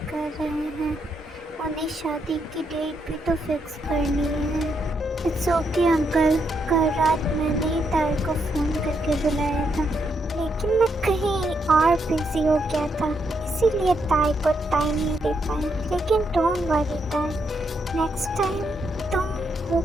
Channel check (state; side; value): normal; both; correlation 0.78